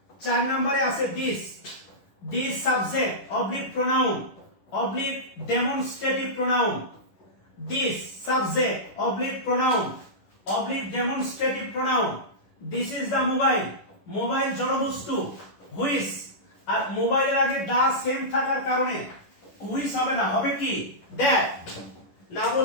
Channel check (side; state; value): right; late; 10 ms